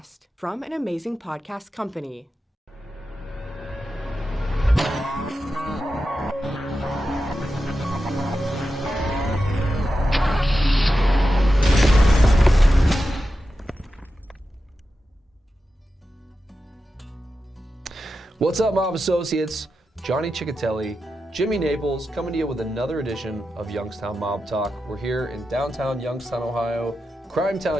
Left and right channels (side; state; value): both; normal; correlation 0.90